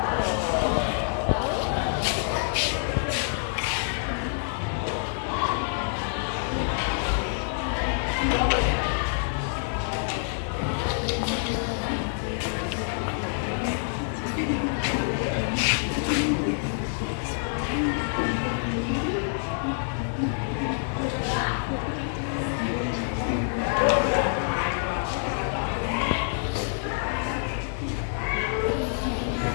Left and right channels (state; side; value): silent; right; digital silence